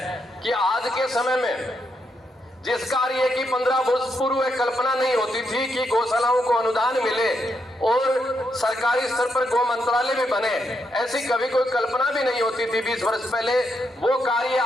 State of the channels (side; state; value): both; normal; correlation 0.80